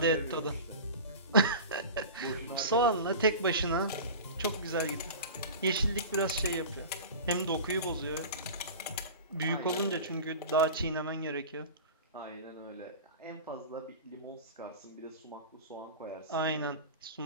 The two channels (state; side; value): inverted; both; correlation -0.33